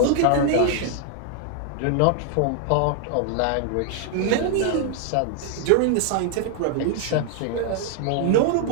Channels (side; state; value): both; different; correlation 0.00